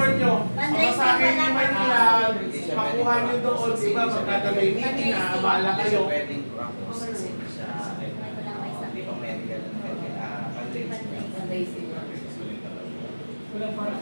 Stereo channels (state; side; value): inverted; both; correlation -1.00